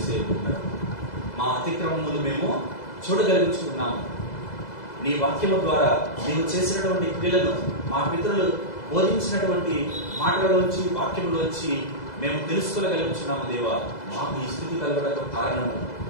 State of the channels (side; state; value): right; late; 2.0 ms